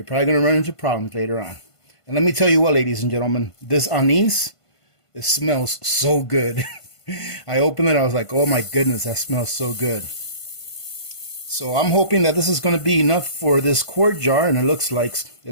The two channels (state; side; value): late; right; 1.5 ms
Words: probably going to run into problems later on. And let me tell you what, ladies and gentlemen, this anise, it smells so good. I opened it, I was like, oh my goodness, that smells so good. So I'm hoping that this is going to be enough for this quart jar, and it looks